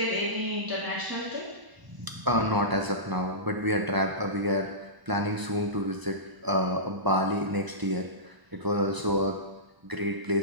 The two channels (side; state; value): left; late; 1.0 ms